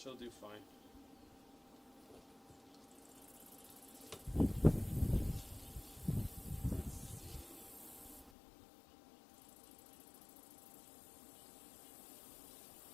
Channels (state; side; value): drops out; right; at 8.3 s